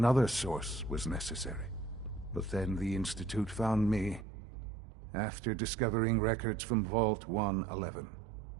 source was necessary. But then the Institute found me after discovering records from Vault 111.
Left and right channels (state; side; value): drops out; left; at 4.2 s